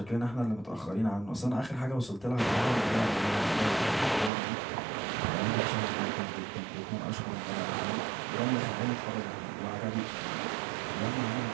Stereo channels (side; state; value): left; drops out; at 4.3 s